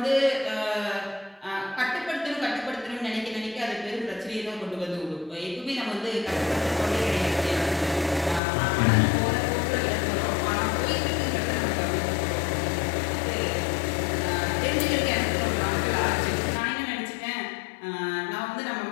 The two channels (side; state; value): right; drops out; at 8.4 s